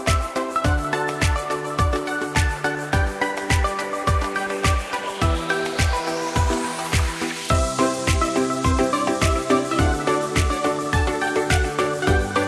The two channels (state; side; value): identical; both; correlation 1.00